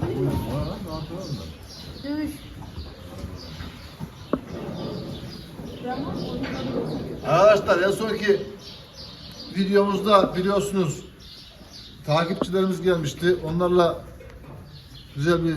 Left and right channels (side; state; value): both; identical; correlation 1.00